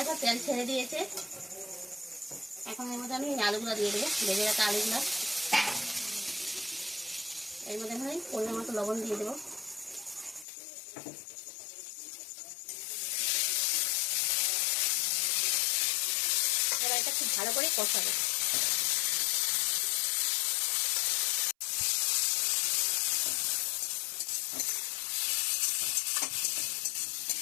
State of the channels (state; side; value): drops out; right; at 10.5 s